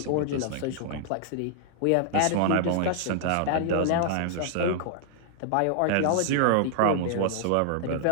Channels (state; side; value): different; both; correlation -0.01